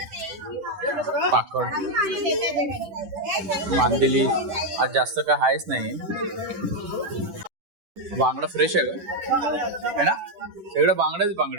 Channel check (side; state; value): left; late; 10 ms